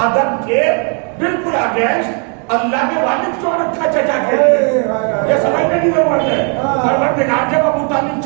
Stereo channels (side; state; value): left; quieter; 39.4 dB